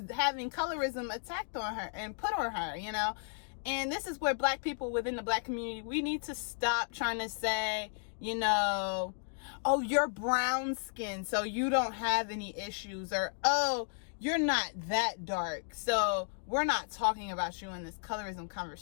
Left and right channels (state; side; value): silent; right; digital silence